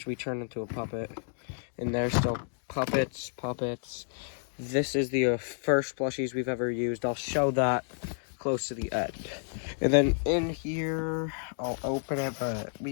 we turned into a puppet. And there's still puppets. This is the first plushies we've ever used. I'll show that close to the end. And then in here, I'll open it, but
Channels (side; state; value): right; silent; digital silence